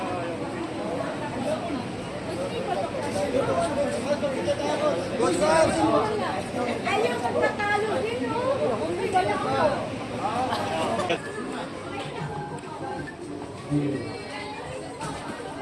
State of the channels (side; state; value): both; identical; correlation 1.00